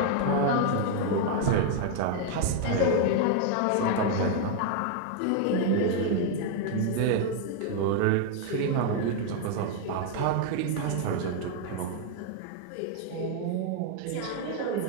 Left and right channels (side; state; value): both; different; correlation 0.00